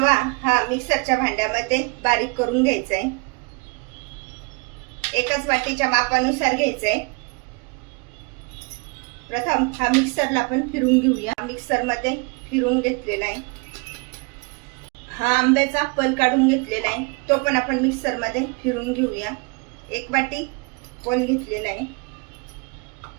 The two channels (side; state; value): left; quieter; 31.1 dB